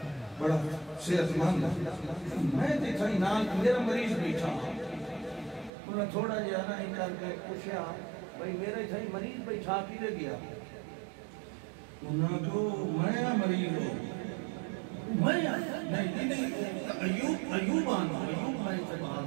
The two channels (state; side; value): drops out; left; at 5.7 s